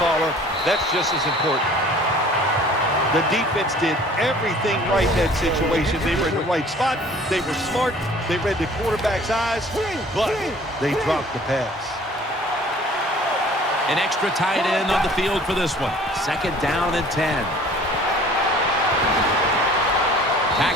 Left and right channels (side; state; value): both; normal; correlation 0.51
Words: caller. That's just as important. The defense did everything right in that situation. They were in the right spot. They were smart. They read the quarterback's eyes, but they dropped the pass. An extra tight end on the field for this one. 2nd down and 10.